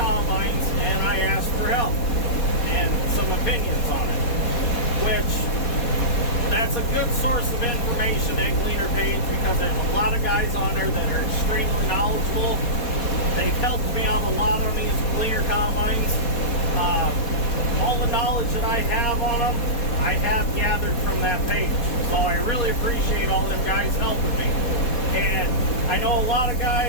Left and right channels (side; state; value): right; late; 4.2 ms